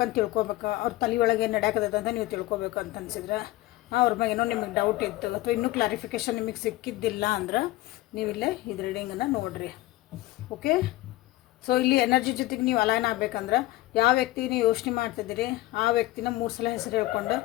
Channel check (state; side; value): quieter; right; 17.6 dB